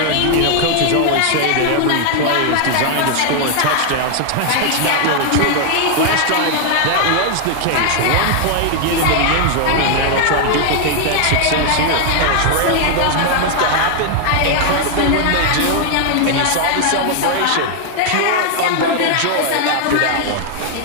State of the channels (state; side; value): different; both; correlation 0.00